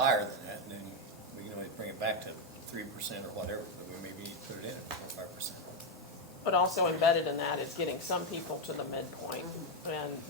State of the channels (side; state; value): both; normal; correlation 0.05